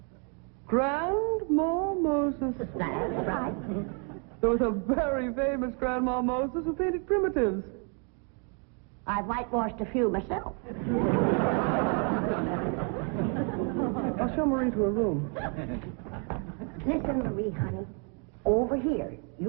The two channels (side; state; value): left; quieter; 38.3 dB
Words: Grandma Moses. That's right. There was a very famous Grandma Moses who painted primitives. I've whitewashed a few myself. I'll show Marie to her room. Listen, Marie, honey. Over here,